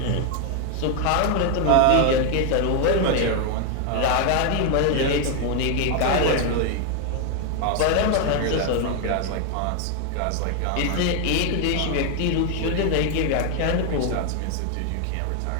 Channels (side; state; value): both; different; correlation 0.01